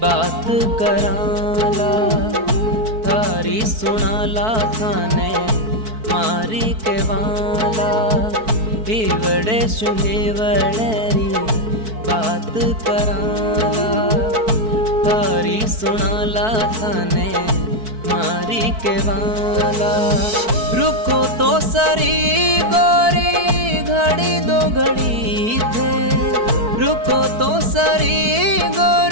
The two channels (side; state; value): left; late; 4.6 ms